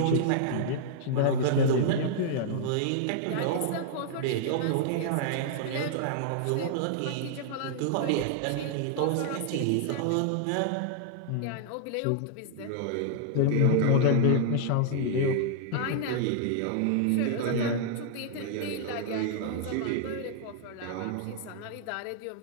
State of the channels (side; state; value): both; different; correlation -0.01